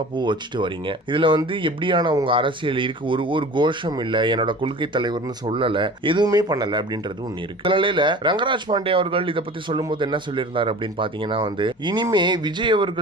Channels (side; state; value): both; normal; correlation 0.40